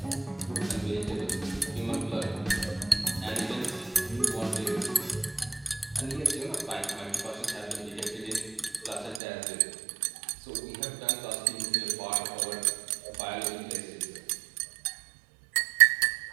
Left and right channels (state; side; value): drops out; left; at 9.2 s